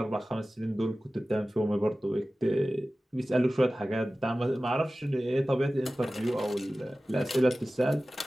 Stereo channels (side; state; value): both; normal; correlation 0.96